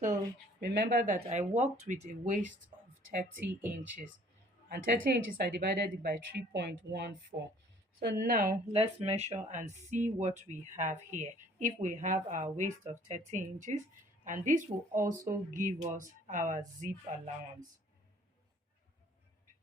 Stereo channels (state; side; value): normal; both; correlation 0.56